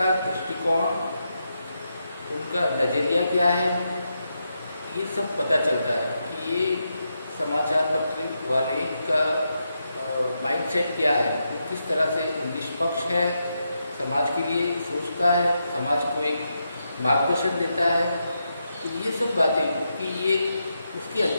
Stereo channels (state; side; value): inverted; both; correlation -0.84